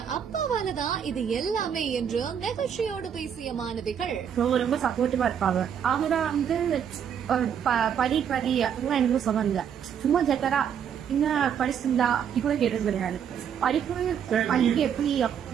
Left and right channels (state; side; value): quieter; left; 8.3 dB